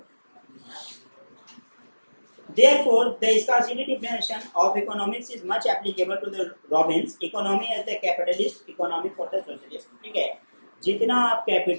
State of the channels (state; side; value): inverted; both; correlation -1.00